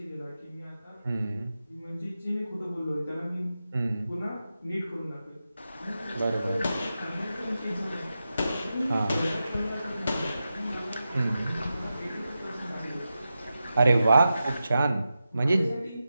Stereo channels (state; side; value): inverted; both; correlation -0.91